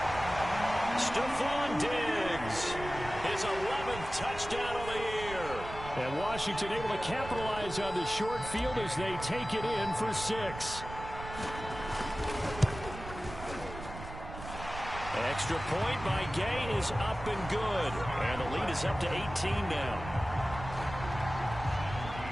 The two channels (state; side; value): noise; right; rumble, 11 dB below the sound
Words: Stephon Diggs. His 11th touchdown of the year. And Washington able to capitalize on the short field as they take it in for 6. Extra point by Gay is up and good. And the lead is up to 18 now.